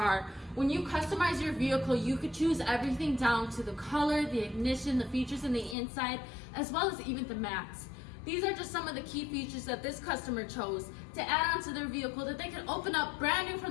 When you customize your vehicle, you could choose everything down to the color, the ignition, the features in the inside, as well as even the mats. These are just some of the key features that this customer chose to add onto their vehicle that they can open up brand new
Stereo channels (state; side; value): drops out; right; at 5.8 s